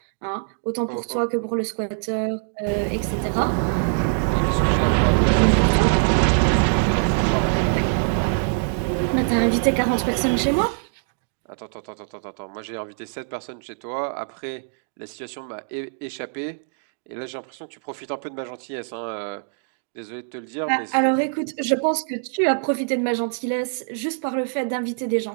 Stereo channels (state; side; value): silent; left; digital silence